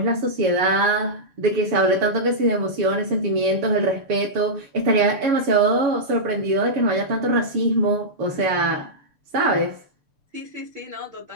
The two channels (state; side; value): late; left; 6.8 ms